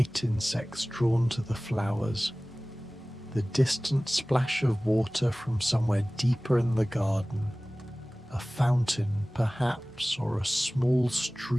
insects drawn to the flowers, the distant splash of water from somewhere deeper in the garden, a fountain perhaps, or a small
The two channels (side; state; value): both; normal; correlation 0.98